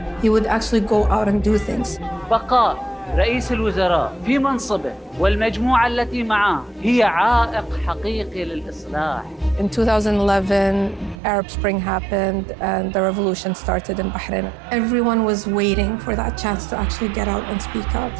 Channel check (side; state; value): left; drops out; at 11.2 s